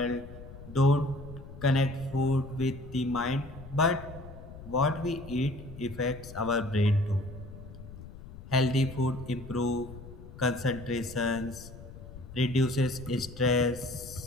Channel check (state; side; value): noise; left; rumble, 14 dB below the sound